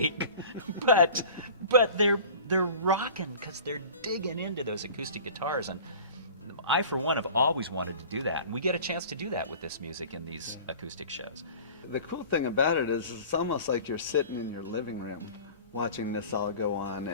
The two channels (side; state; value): both; inverted; correlation -0.42